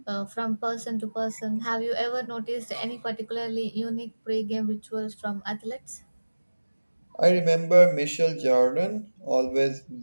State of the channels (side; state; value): both; inverted; correlation -1.00